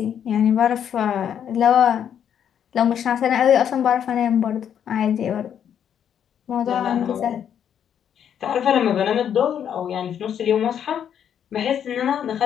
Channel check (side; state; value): right; quieter; 8.9 dB